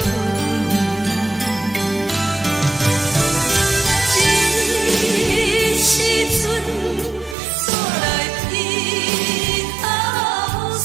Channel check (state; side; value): drops out; left; at 7.4 s